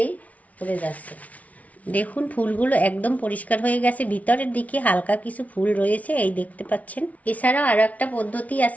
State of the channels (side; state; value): right; late; 0.069 ms